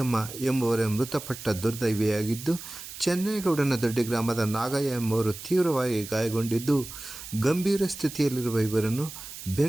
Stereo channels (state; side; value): noise; right; hiss, 12 dB below the sound